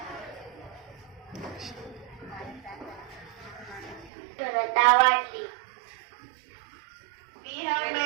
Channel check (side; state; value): left; drops out; at 4.1 s